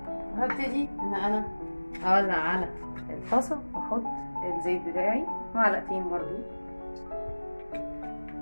هبتدي ان انا اولع على الطاسه واحط الزيت بتاعي، معلقتين برضو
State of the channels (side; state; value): both; inverted; correlation -1.00